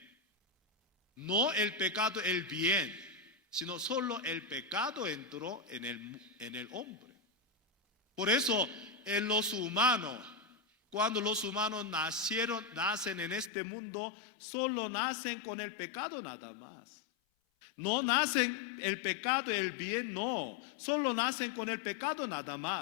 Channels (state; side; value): drops out; right; at 13.5 s